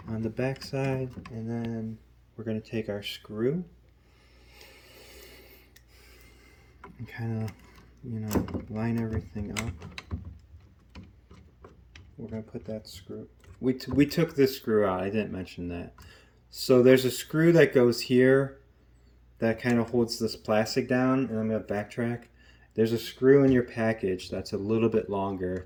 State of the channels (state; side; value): identical; both; correlation 1.00